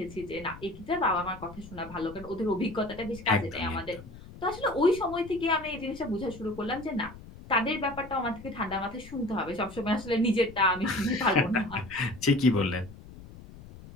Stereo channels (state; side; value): noise; left; rumble, 16 dB below the sound